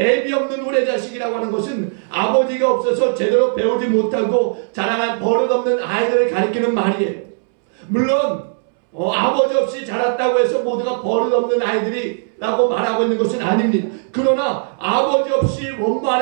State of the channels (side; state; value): left; silent; 67 dB below the other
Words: 없는 후레자식이라고 하는 것은 아버지가 없어서 제대로 배우지 못하고 자라난 버릇없는 아이들을 가리키는 말이에요. 물론 아버지 없이 자랐다고 해서 모두가 버릇없는 아이들이라고 말하고 있는 것은 아닙니다. 그러나 아버지 없이